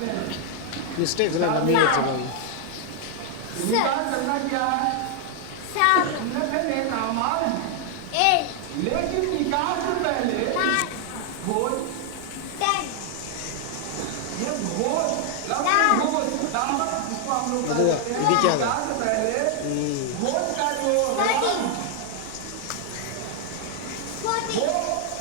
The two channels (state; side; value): different; both; correlation 0.00